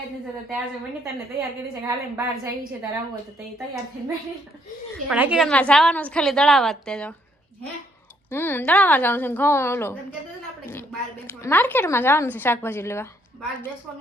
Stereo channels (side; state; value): both; normal; correlation 0.69